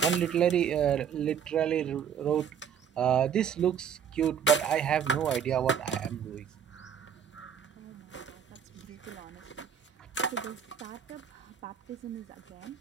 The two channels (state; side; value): quieter; left; 8.0 dB